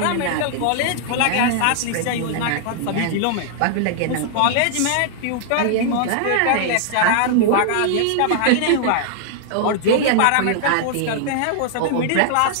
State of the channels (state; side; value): different; both; correlation -0.01